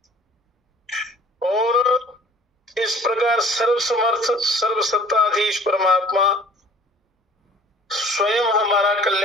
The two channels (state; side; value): normal; both; correlation 0.49